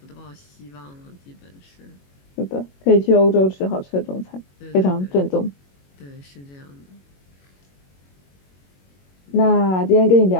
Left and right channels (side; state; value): right; late; 21 ms